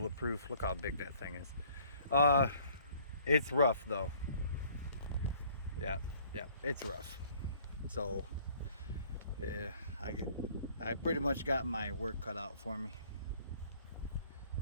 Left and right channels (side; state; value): both; inverted; correlation -0.57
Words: Look how big that thing is. It's rough though. Yeah, it's rough. So yeah, I pretty much got my work cut out for me.